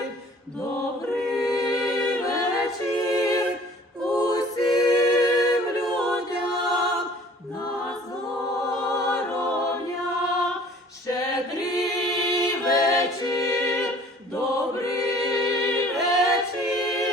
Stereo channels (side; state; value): both; normal; correlation 0.51